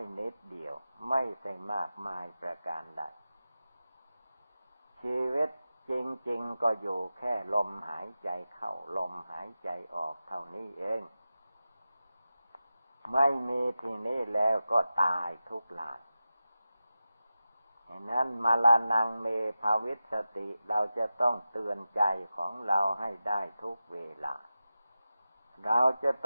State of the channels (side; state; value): both; inverted; correlation -0.93